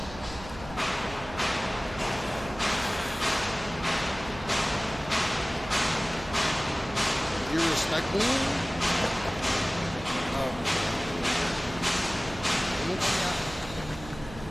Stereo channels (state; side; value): noise; right; hum, 14 dB below the sound